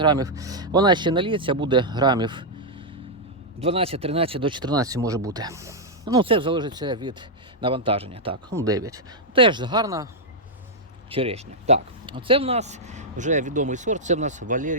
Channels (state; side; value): normal; both; correlation -0.04